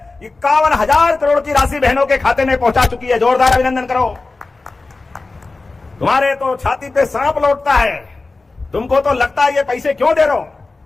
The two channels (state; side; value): quieter; right; 3.6 dB